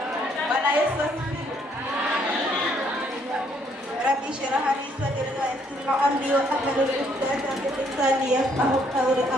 Bwana Yesu asifiwe. Rabbi shrah li sadri wa yassir li amri wa hlul 'uqdatam min lisani yafqahu qawli.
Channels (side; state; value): both; normal; correlation 0.68